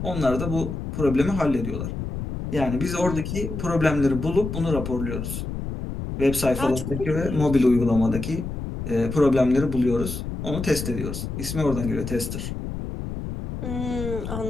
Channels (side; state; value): left; noise; rumble, 6 dB below the sound